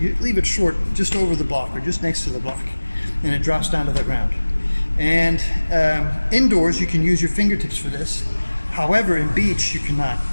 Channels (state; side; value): inverted; both; correlation -1.00